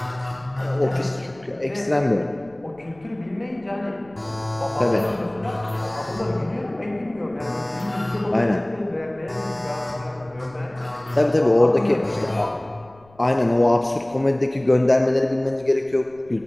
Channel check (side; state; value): left; noise; rumble, 28 dB below the sound